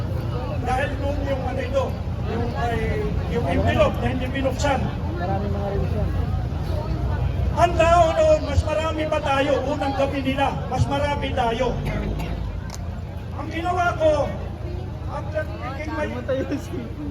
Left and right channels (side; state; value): both; identical; correlation 1.00